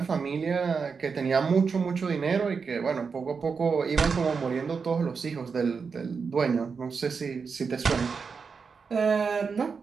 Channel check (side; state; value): left; quieter; 5.4 dB